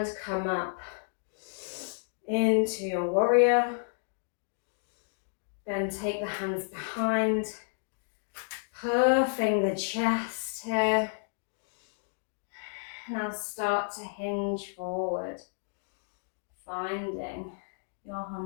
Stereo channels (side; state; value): right; silent; digital silence